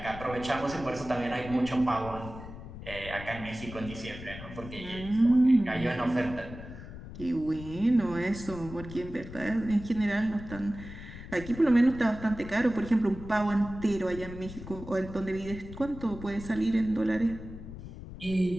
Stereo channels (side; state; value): left; noise; rumble, 12 dB below the sound